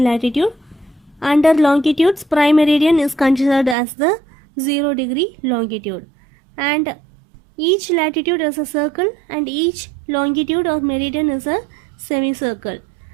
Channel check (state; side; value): drops out; left; at 3.8 s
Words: Under longitudes, prime meridian is considered as the 0 degree longitude. And each latitude is a circle and each longitude or meridian is a semicircle.